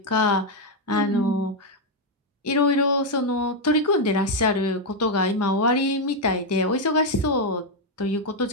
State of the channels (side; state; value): both; normal; correlation 0.02